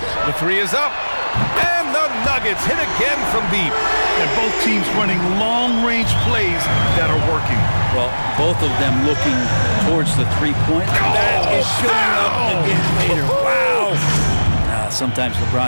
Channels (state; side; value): inverted; both; correlation -1.00